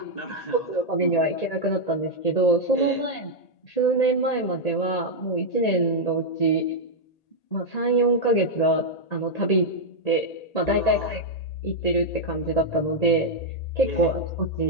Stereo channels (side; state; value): right; late; 1.8 ms